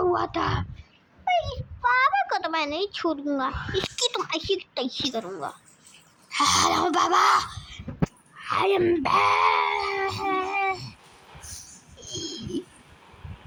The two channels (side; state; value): both; identical; correlation 1.00